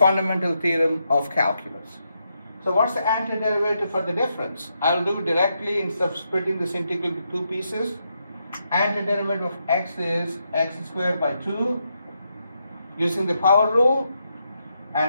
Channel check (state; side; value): inverted; both; correlation -0.82